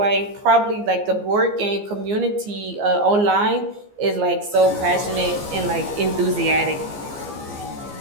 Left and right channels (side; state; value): left; late; 15 ms